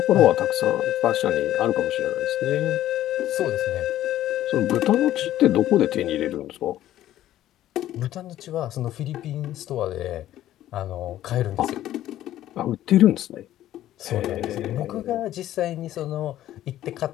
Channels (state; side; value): quieter; right; 13.1 dB